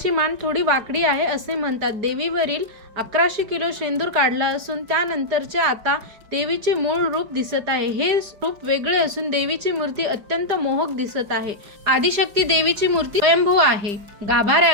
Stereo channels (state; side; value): late; left; 4.9 ms